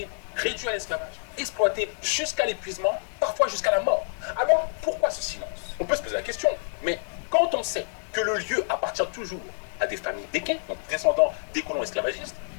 réduits à l'esclavage, exploités jusqu'à l'épuisement, parfois jusqu'à la mort. Alors, pourquoi ce silence? On peut se poser la question, mais quand on sait que le lieu appartient toujours à des familles d'équins, donc descendants des colons esclavagistes,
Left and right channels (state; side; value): silent; right; 60 dB below the other